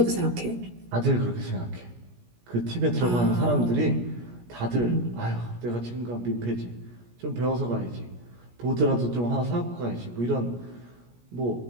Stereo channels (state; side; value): late; left; 17 ms